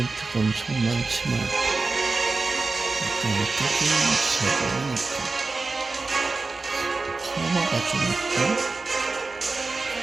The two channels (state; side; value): quieter; left; 3.8 dB